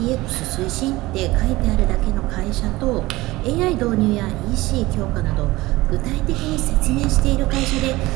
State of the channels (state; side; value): quieter; left; 19.5 dB